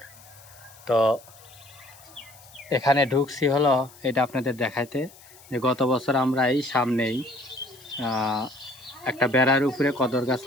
তো এখানে ঢুকছি হলো এটা আপনাদের দেখাইতে, যে গত বছর আমরা এই সামনেই একটা বেড়ার উপরে কদর গাছ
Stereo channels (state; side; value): noise; left; hiss, 23 dB below the sound